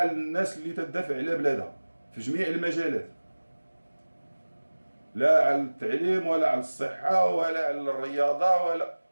الناس اللي تدافع على بلادها في جميع المجالات، لا على التعليم ولا على الصحه ولا على الرياضه ولا.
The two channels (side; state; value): both; inverted; correlation -1.00